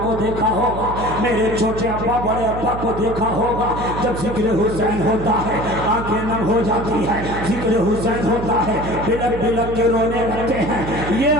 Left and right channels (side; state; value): right; noise; hum, 7 dB below the sound